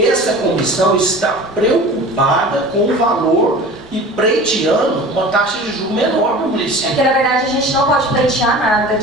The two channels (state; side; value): normal; both; correlation 0.39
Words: comissão está preocupada com o valor e pleiteando uma taxa de juros menor para o município. É que, na verdade, a gente não pode pleitear nada.